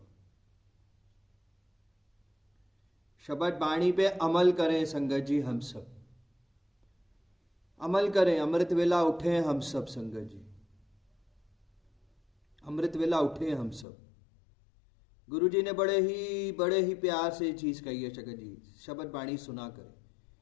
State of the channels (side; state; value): right; drops out; at 13.9 s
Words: शब्द बाणी पे अमल करें संगत जी, हम सब अमल करें, अमृत वेला उठे हम सब संगत जी, अमृत वेला उठे हम सब। गुरु जी ने बड़े ही प्यार से चीज कही है संगत जी, शब्द बाणी सुना करें।